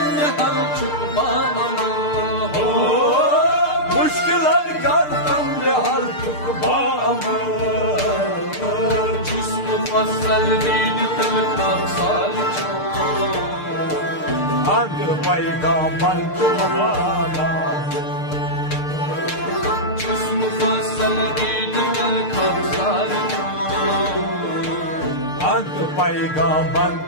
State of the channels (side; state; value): right; late; 6.6 ms